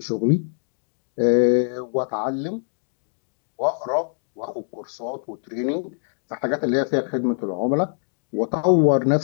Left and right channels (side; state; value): right; silent; digital silence